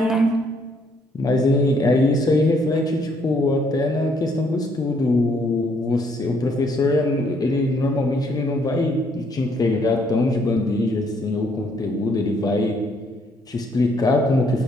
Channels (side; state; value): both; normal; correlation 0.68